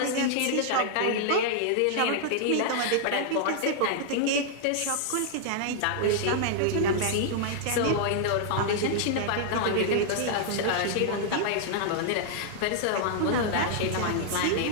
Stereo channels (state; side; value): different; both; correlation -0.01